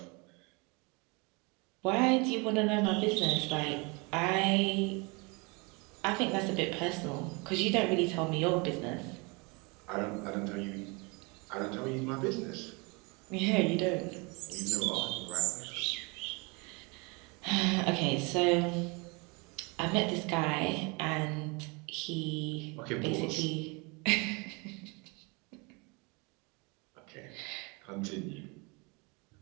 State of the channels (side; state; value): left; quieter; 29.2 dB